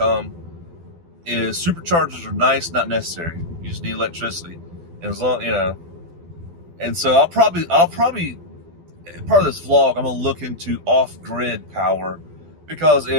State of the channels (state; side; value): late; left; 12 ms